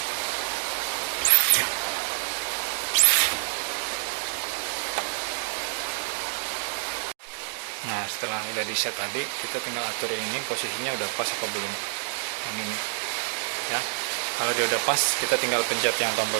Nah setelah udah di set tadi, kita tinggal atur ini posisinya udah pas apa belum. Yang ini ya, kalau dia udah pas kita tinggal pencet yang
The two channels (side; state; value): left; silent; digital silence